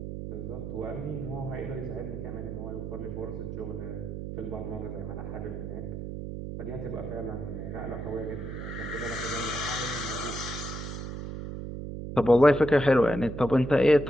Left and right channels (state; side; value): noise; right; hum, 6 dB below the sound